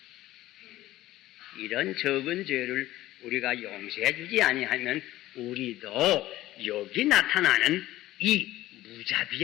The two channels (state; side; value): quieter; right; 15.6 dB